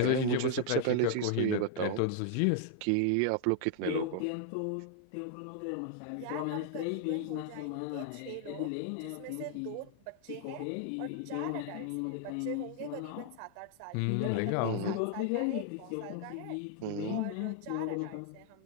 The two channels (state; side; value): different; both; correlation 0.00